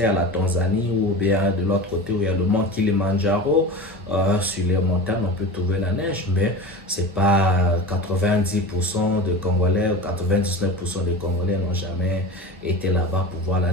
la Tanzanie, ou bien de l'autre côté où il y a le mont Kilimandjaro, sur les montagnes, on peut trouver la neige, mais c'est pas 90% de Congolais ou 99% des Congolais n'ont jamais été là-bas pour voir la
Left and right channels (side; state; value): both; normal; correlation 0.31